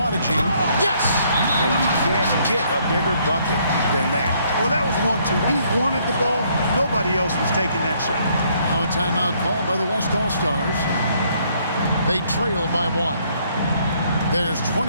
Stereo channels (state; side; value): inverted; both; correlation -0.67